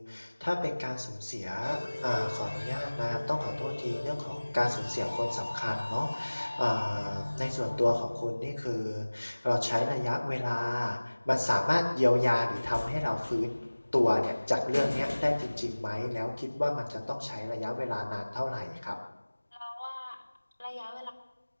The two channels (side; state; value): both; inverted; correlation -1.00